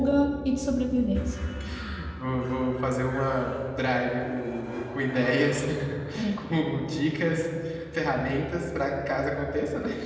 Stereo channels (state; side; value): identical; both; correlation 1.00